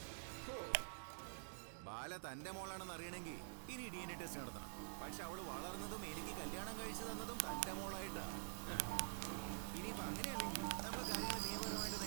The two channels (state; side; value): silent; left; digital silence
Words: ബാല തന്റെ മോളാണെന്ന് അറിയണമെങ്കിൽ ഇനി DNA ടെസ്റ്റ് നടത്തണം. പക്ഷെ അവള് വളർന്നതും എനിക്ക് കല്യാണം കഴിച്ചു തന്നതും തന്റെ മോളായിട്ടാ. ഇനിയിപ്പോ അങ്ങനെയല്ലെങ്കിൽ നമ്മൾ കാര്യങ്ങൾ നിയമപരമായിട്ട്